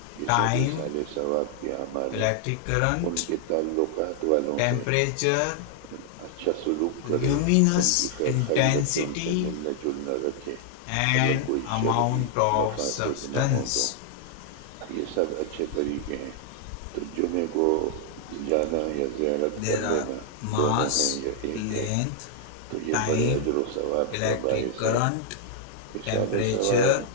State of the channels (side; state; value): both; different; correlation -0.01